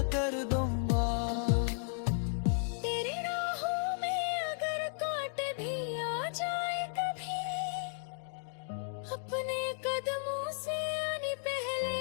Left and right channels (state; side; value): silent; right; digital silence